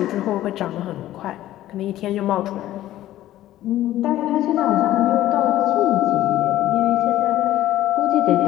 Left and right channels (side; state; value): right; quieter; 14.0 dB